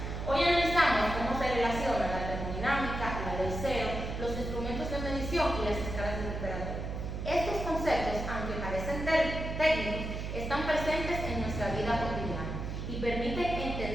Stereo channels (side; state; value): right; noise; hum, 5 dB below the sound